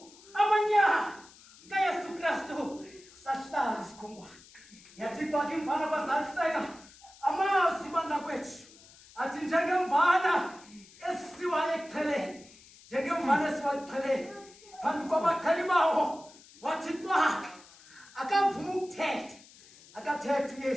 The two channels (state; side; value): noise; left; hiss, 23 dB below the sound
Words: amanyala kaYesu Kristu sahlala isikhonkwane yathi kwakhe imvana bazaliseka amazwi bangakwethu athi njengemvana esiwa eqheleni njengemvana esiwa eqheleni phambi kwabakhali bawo wathi kwakhe akavuma ukuthetha akathetha